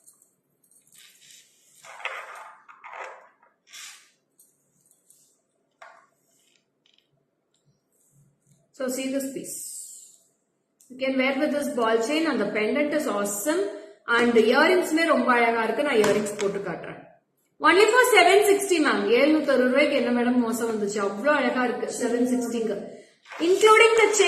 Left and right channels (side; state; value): both; identical; correlation 1.00